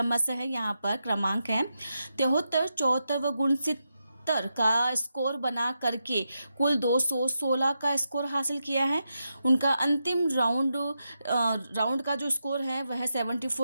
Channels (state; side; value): inverted; both; correlation -0.86